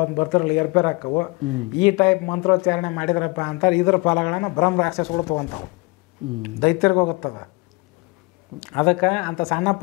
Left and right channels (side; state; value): right; quieter; 26.8 dB